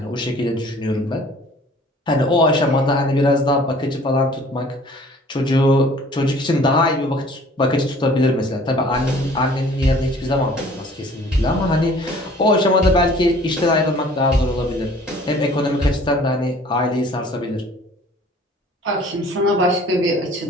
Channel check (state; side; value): normal; both; correlation 0.52